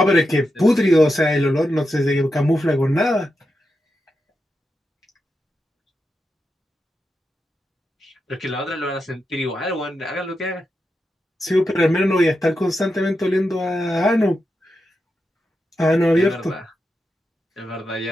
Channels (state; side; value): normal; both; correlation 0.87